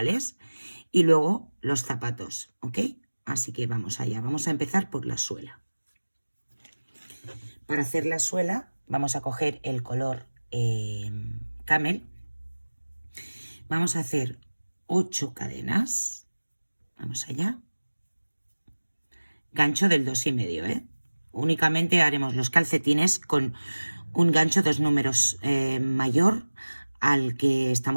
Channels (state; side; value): inverted; both; correlation -1.00